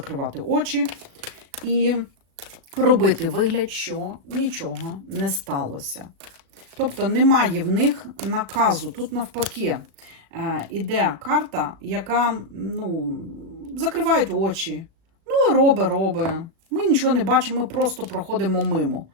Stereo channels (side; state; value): left; late; 36 ms